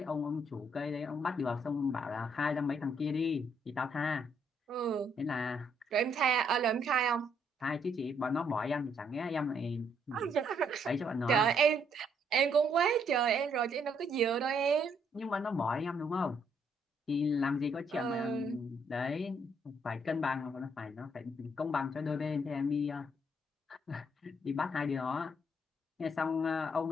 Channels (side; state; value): both; normal; correlation 0.71